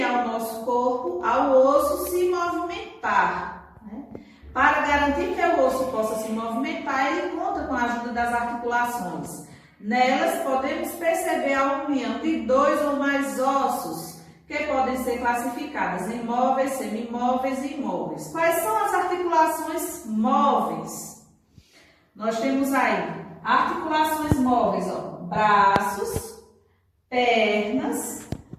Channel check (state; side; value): identical; both; correlation 1.00